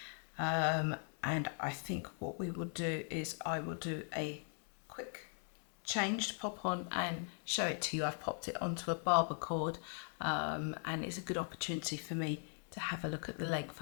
and I think what we will do is I will do a quick change to pop on and show it to you. I've popped it onto a barber cord, and it's a good opportunity for me to have a look at the length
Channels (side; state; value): right; silent; 51 dB below the other